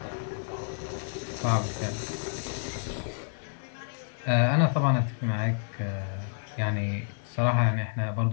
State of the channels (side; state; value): right; silent; 58 dB below the other